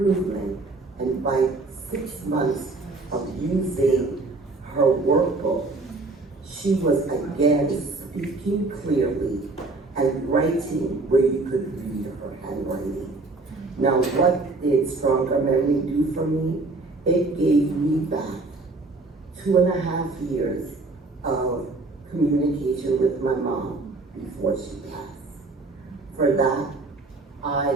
And by 6 months of using her workbook, she was again speaking clearly and writing where you could read her handwriting. Now, what did StrongerMemory do for me? It gave me back 2.5 years of communication with my mom before she passed. For that, I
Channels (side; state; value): left; quieter; 3.4 dB